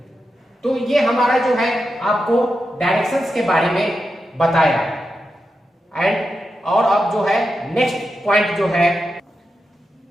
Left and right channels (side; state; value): both; normal; correlation 0.88